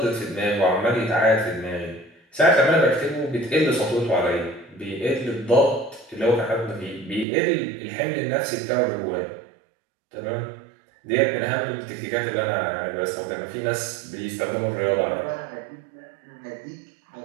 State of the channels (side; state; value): left; drops out; at 7.2 s